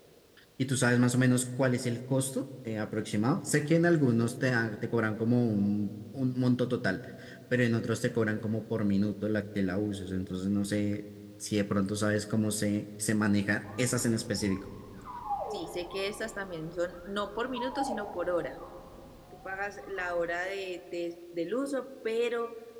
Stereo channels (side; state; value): both; identical; correlation 1.00